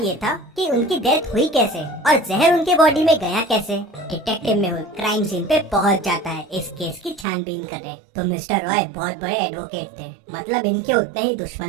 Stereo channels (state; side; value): drops out; left; at 7.2 s